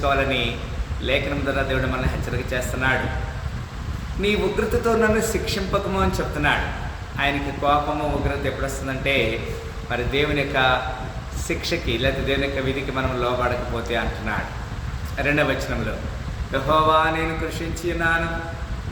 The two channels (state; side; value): identical; both; correlation 1.00